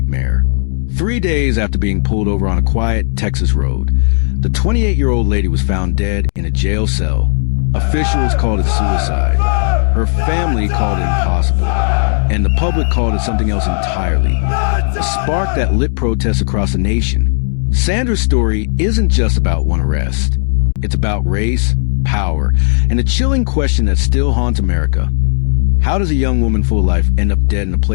3 days after being pulled over on a quiet Texas road, the 28-year-old lady was found dead in a jail cell. Officials called it suicide. Her family called it impossible. And the public called it something else entirely. A spark that lit protests across the nation. Sandra's story isn't just about one arrest. It's about race, power, and a chilling question that still haunts America. How does a young woman full of life end up dead in a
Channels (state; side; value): silent; right; digital silence